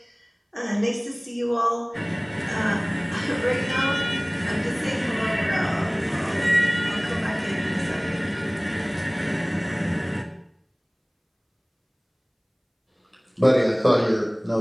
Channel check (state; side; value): identical; both; correlation 1.00